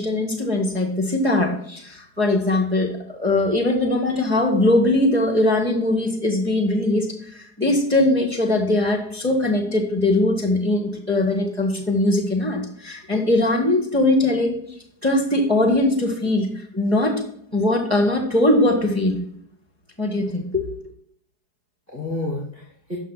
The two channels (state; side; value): late; left; 4.8 ms